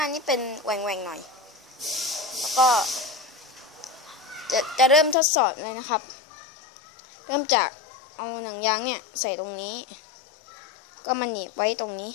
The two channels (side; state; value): right; drops out; at 5.2 s